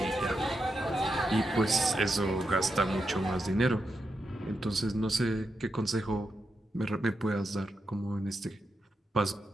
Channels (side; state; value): both; normal; correlation 0.86